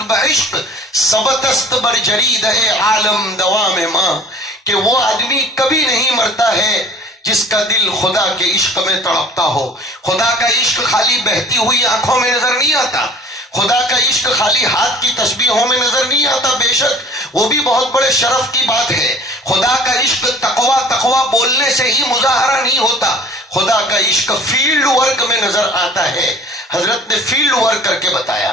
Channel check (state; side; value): normal; both; correlation 0.48